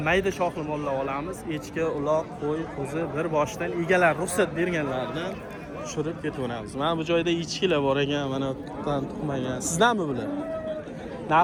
mayda shoxli mollar olamiz. Echki, uloq, qo'y, qo'zi bir boshdan egalar ruxsat berganlardan tushirib ketaveramiz. Mana bu joyda echkilar bor ekan, mana tuqqan, tuqmagan. Sizdanmi bular?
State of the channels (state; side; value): identical; both; correlation 1.00